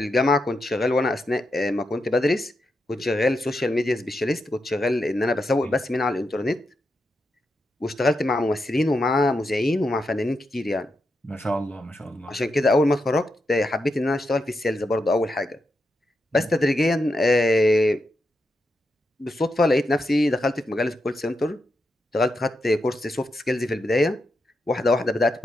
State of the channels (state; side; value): normal; both; correlation 0.85